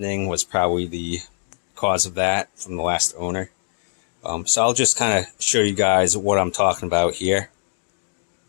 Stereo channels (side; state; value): right; silent; digital silence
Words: was probably the cause of that from the last owner. So I'll just kind of show you guys what I'm talking about here.